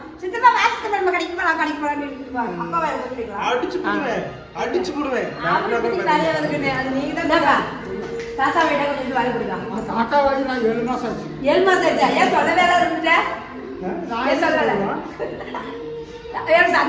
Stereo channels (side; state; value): both; identical; correlation 1.00